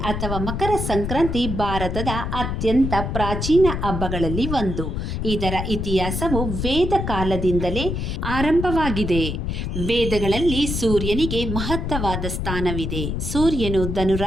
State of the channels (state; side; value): noise; left; rumble, 3 dB below the sound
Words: ಅಥವಾ ಮಕರ ಸಂಕ್ರಾಂತಿ ಭಾರತದ ಅತ್ಯಂತ ಪ್ರಾಚೀನ ಹಬ್ಬಗಳಲ್ಲಿ ಒಂದು. ಇದರ ಇತಿಹಾಸವು ವೇದ ಕಾಲದಿಂದಲೇ ಆರಂಭವಾಗಿದೆ. ವೇದಗಳಲ್ಲಿ ಸೂರ್ಯನಿಗೆ ಮಹತ್ತರವಾದ ಸ್ಥಾನವಿದೆ. ಸೂರ್ಯನು